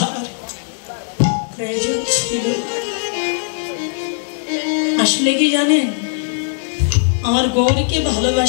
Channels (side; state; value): right; silent; digital silence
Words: প্রয়োজন ছিল। আসলে কি জানেন, আমার গৌরীকে